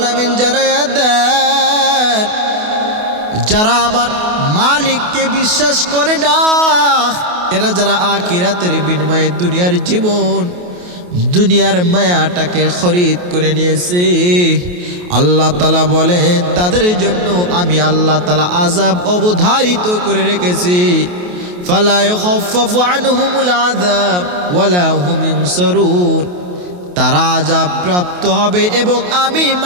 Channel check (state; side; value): late; left; 28 ms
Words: জানায় দেন যারা আমার মালিককে বিশ্বাস করে না, এরা যারা আখিরাতের বিনিময়ে দুনিয়ার জীবন, দুনিয়ার মায়াটাকে খরিদ করে নিয়েছে, আল্লাহ তাআলা বলে তাদের জন্য আমি আল্লাহ তাআলা আযাব অবধারিত করে রেখেছি। ফালা ইখাফফাফু আনহুমুল আযাব ওয়ালা হুম ইউনসারুন। তারা আযাব প্রাপ্ত হবে এবং আমি